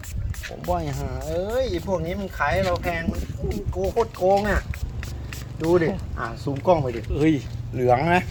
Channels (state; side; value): identical; both; correlation 1.00